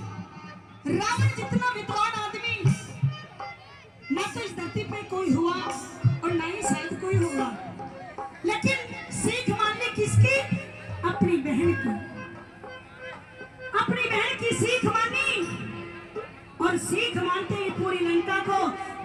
रावण जितना विद्वान आदमी ना तो इस धरती पे कोई हुआ और ना ही शायद कोई होगा, लेकिन सीख मानने किसकी? अपनी बहन की। अपनी बहन की सीख मानी और सीख मानते ही पूरी लंका को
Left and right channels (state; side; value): identical; both; correlation 1.00